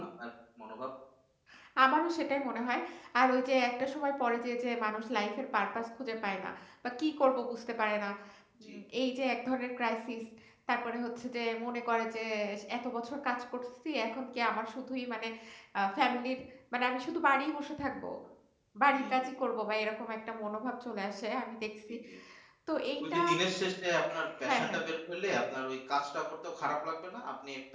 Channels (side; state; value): both; identical; correlation 1.00